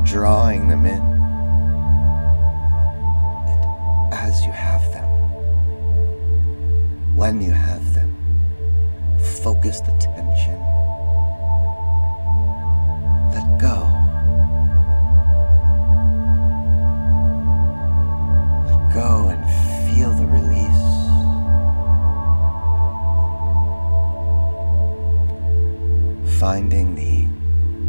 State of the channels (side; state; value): both; inverted; correlation -1.00